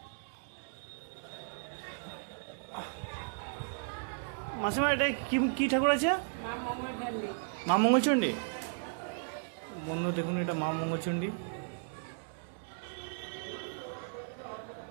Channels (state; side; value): silent; left; digital silence